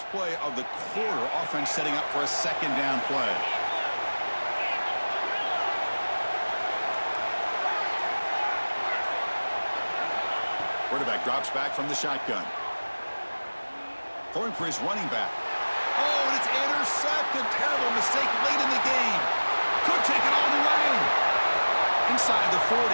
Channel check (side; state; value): both; inverted; correlation -1.00